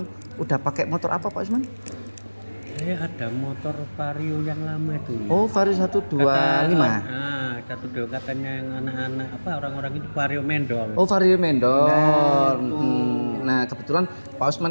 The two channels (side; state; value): both; inverted; correlation -1.00